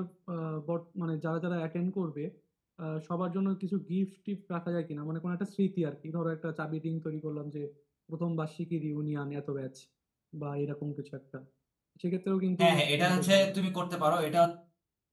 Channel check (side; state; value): both; identical; correlation 1.00